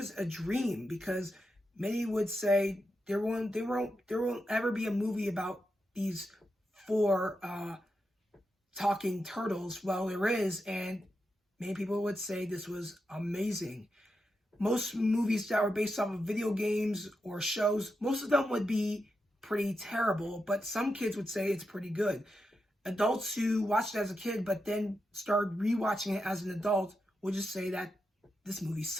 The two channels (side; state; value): both; normal; correlation 0.87